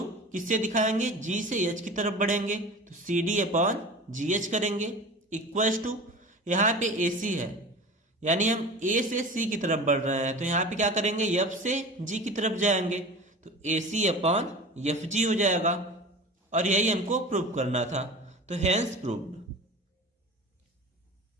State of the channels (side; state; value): both; normal; correlation 0.35